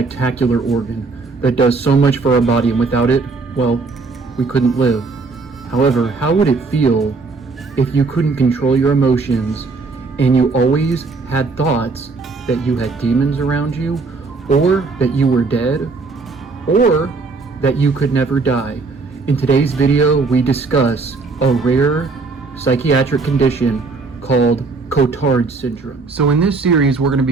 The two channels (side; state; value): left; quieter; 4.1 dB